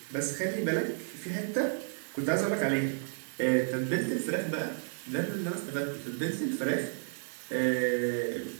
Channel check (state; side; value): silent; left; digital silence